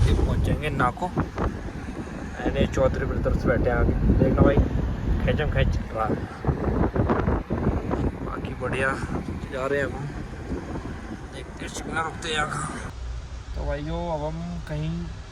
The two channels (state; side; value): identical; both; correlation 1.00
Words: पहुंचेंगे नाको। मैंने चौधरी ब्रदर्स बैठे हैं आगे, देखना भाई खैचम खैच रहा है। बाकी बढ़िया जा रहे हैं हम, देखते हैं रुकते हैं यहाँ। तो भाई जो अब हम कहीं